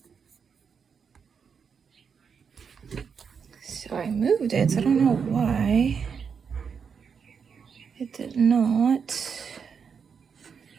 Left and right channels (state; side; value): quieter; left; 6.4 dB